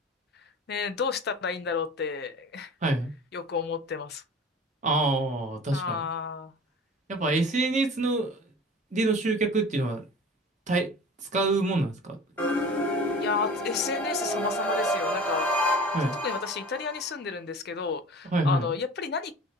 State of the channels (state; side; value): normal; both; correlation 0.40